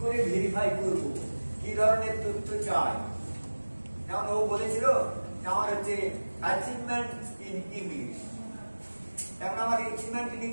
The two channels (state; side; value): inverted; both; correlation -1.00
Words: করে ভেরিফাই করব, কি ধরনের তথ্য চাই। যেমন ও বলেছিল আমার হচ্ছে অ্যাচিভমেন্ট ইন ইংলিশ, তেমন আমার অ্যাচিভমেন্ট ইন